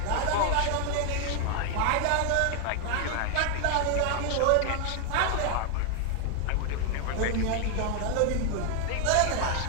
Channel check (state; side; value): different; both; correlation 0.00